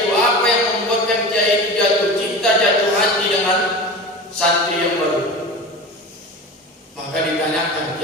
apa yang membuatkan kiai itu jatuh cinta, jatuh hati dengan santri yang baru. Maka ditanyakan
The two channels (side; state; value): both; normal; correlation 0.31